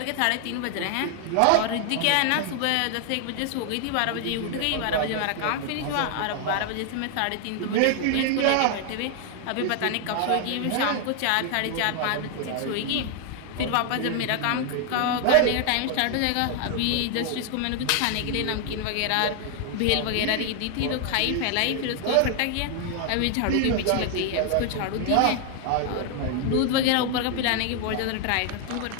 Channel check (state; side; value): different; both; correlation 0.00